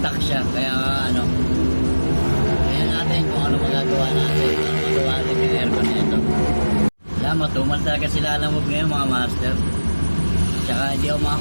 siya kaya kaya natin kung ano magagawa natin. Magawa natin yung aircon nito. Alam, matumal talaga sila alamog ngayon mga master. Tsaka hindi ako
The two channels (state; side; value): inverted; both; correlation -1.00